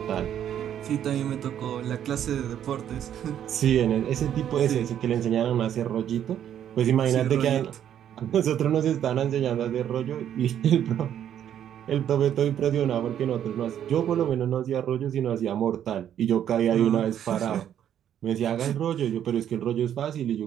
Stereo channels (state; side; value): quieter; left; 10.1 dB